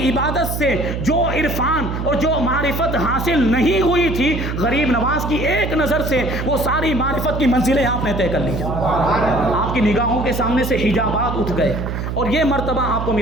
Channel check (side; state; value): right; noise; hum, 4 dB below the sound